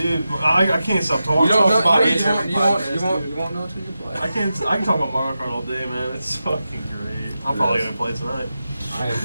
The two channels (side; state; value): both; inverted; correlation -0.91